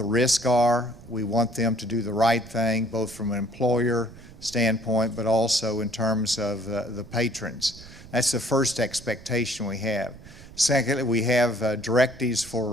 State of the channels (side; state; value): right; noise; rumble, 18 dB below the sound